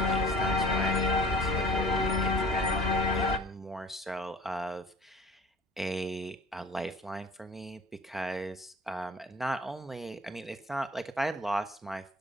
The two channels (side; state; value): both; normal; correlation 0.47